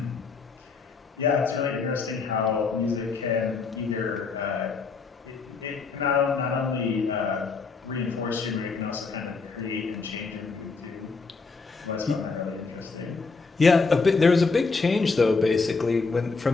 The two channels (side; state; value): right; quieter; 4.5 dB